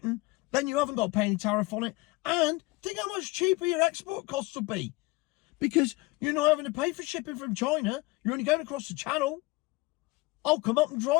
Then you haven't got to pay any tariff on it. And think how much cheaper your export costs will be. Because you're not having to pay for shipping from China. You're only going across the channel. I'll come up and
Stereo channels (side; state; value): right; quieter; 22.5 dB